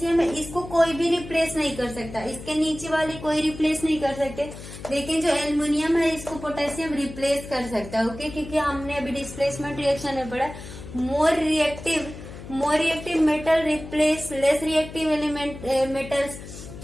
है इसको कोई भी रिप्लेस नहीं कर सकता, इसके नीचे वाली कोई रिप्लेस नहीं कर सकते, लेकिन जो एल्युमिनियम है इसको पोटेशियम रिप्लेस कर सकता है। ओके, क्योंकि हमने अभी डिस्प्लेसमेंट रिएक्शन में पढ़ा, मोर reactive metal replace less reactive element metals.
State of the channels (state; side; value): noise; left; hum, 13 dB below the sound